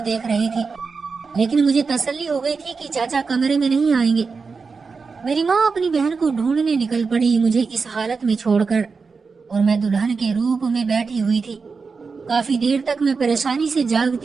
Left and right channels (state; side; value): quieter; left; 4.8 dB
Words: دیکھ رہی تھی، لیکن مجھے تسلی ہو گئی تھی کہ چاچا کمرے میں نہیں آئیں گے۔ میری ماں اپنی بہن کو ڈھونڈنے نکل پڑی مجھے اس حالت میں چھوڑ کر، اور میں دلہن کے روپ میں بیٹھی ہوئی تھی۔ کافی دیر تک میں پریشانی سے